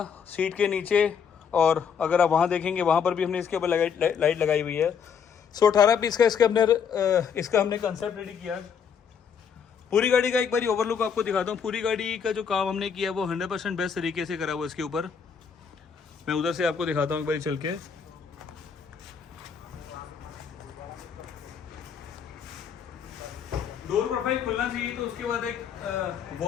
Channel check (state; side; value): quieter; right; 7.0 dB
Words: सीट के नीचे, और अगर आप वहाँ देखेंगे वहाँ पर भी हमने इसके ऊपर लाइट लगाई हुई है। सो 18 पीस का इसका हमने कंसेप्ट रेडी किया। पूरी गाड़ी का एक बारी ओवरलुक आपको दिखाता हूँ। पूरी गाड़ी का जो काम हमने किया वो 100% बेस्ट तरीके से करा हुआ इसके ऊपर। मैं उधर से आपको दिखाता हूँ एक बारी चल के। डोर प्रोफाइल खुलना चाहिए तो उसके बाद एक